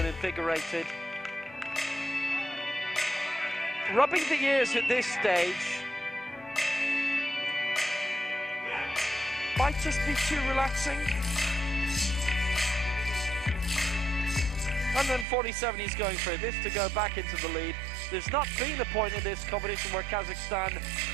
invigorated. Rubbing the ears at this stage might just be too relaxing. 147 he's going for this to go back into the lead. There's not been a point in this competition where Kazakhstan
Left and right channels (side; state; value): left; drops out; at 15.2 s